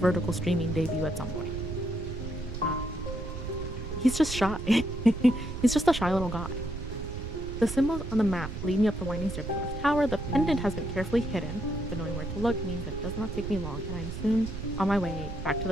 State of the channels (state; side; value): noise; right; rumble, 7 dB below the sound